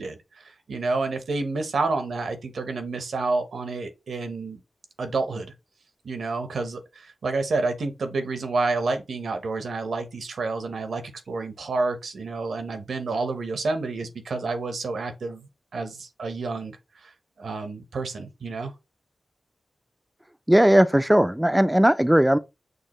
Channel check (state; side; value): normal; both; correlation 0.95